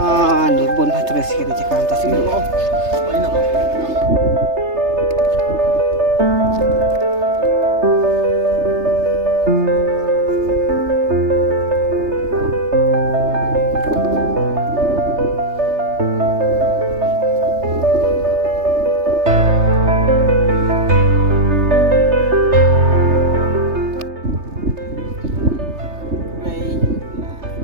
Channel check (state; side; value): late; left; 3.3 ms